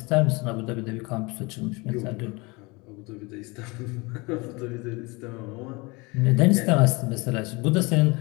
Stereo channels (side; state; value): right; quieter; 26.0 dB